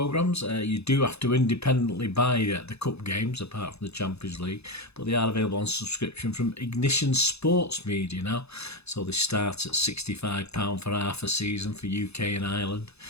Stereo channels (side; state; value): right; late; 0.79 ms